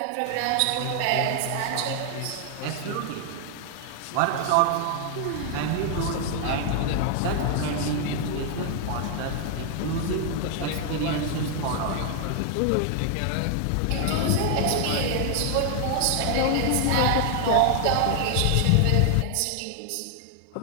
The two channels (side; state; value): both; different; correlation 0.00